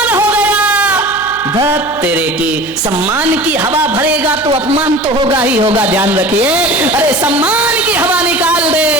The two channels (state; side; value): noise; right; hum, 23 dB below the sound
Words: हो गया। धत तेरे की, सम्मान की हवा भरेगा तो अपमान तो होगा ही होगा, ध्यान रखिए। अरे सम्मान की हवा निकाल दे,